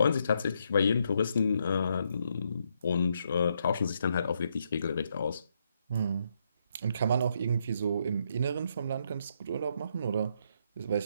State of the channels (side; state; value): both; inverted; correlation -0.77